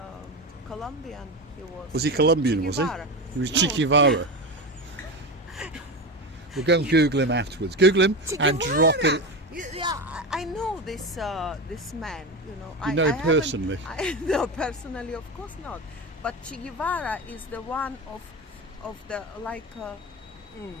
Colombian he was. Was he Colombian, Che was he? Guevara. He was No. Che Guevara. We'll go and Google him afterwards. Google him Che and Guevara. drop it. Yeah, I know this man. You know. You know him personally? No, personally, of course not. But Che Guevara is the one of the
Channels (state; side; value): normal; both; correlation 0.21